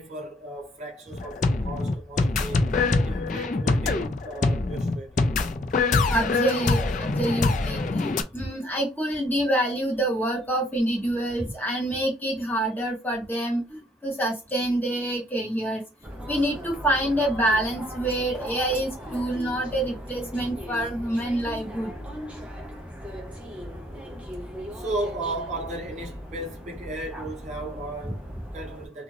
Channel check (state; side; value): normal; both; correlation 0.65